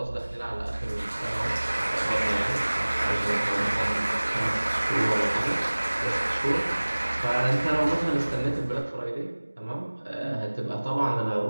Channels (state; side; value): inverted; both; correlation -1.00